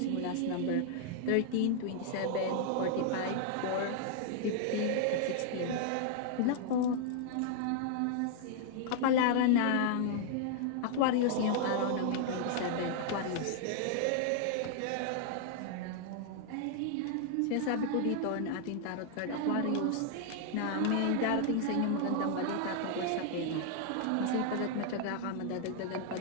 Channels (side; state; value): both; different; correlation 0.00